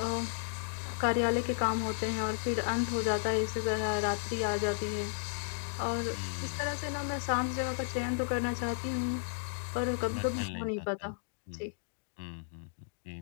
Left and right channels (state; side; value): silent; right; digital silence